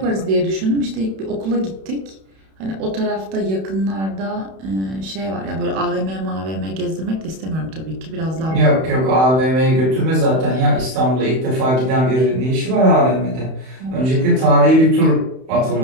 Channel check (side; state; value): left; late; 31 ms